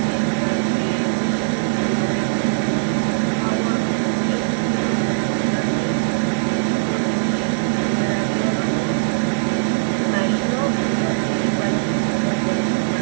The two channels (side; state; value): left; silent; digital silence